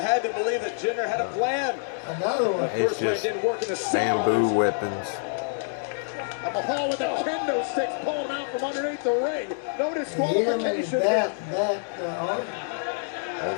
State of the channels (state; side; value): silent; right; 61 dB below the other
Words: to believe that Jinder had a plan. Another one. It's just bamboo weapons. Mahal with the kendo sticks pulling out from underneath the ring. No disqualification. Oh,